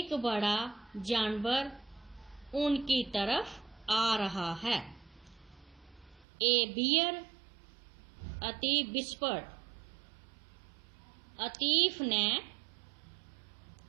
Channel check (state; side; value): drops out; left; at 6.2 s